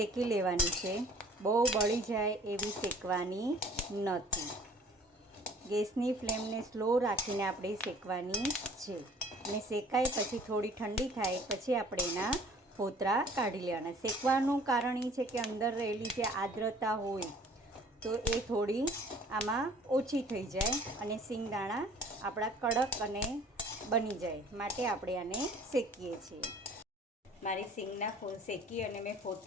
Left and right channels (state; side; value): normal; both; correlation 0.52